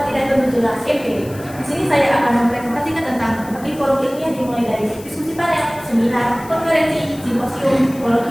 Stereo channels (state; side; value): noise; left; hiss, 20 dB below the sound